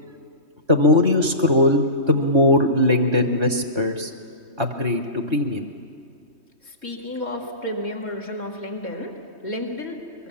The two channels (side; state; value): left; late; 3.2 ms